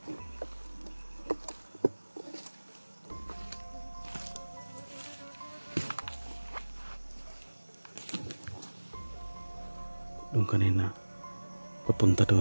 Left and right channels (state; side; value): inverted; both; correlation -1.00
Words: Doon kanina papunta